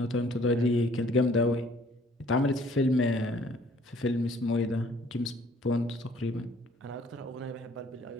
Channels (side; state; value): both; normal; correlation 0.58